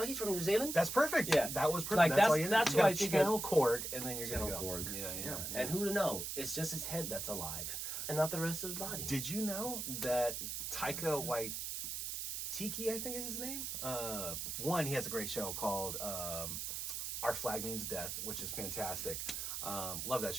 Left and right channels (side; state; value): right; noise; hiss, 4 dB below the sound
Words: he's from New Zealand. That's perfect. Yeah, that was perfect. Like, that's that's why why I you think channel Korg, and then you're gonna go. Korg. Yeah. And who to know? It's just his head that's alive, and not the rest of his body. Did you know that Taika Waititi, I think is his name? He has a great show called Our Flag Means Death, which is fantastic. Love that